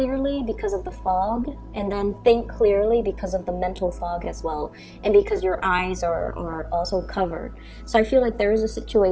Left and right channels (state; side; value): identical; both; correlation 1.00